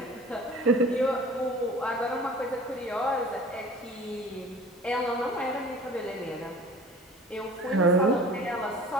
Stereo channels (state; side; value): normal; both; correlation 0.44